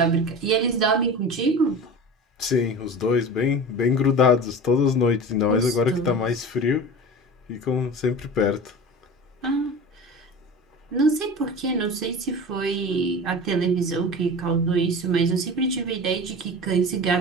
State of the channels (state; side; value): normal; both; correlation 0.33